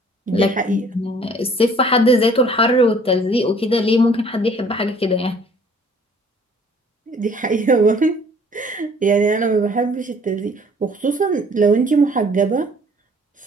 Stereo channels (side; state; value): both; normal; correlation 0.56